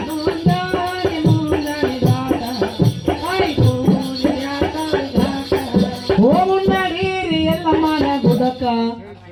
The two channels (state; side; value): identical; both; correlation 1.00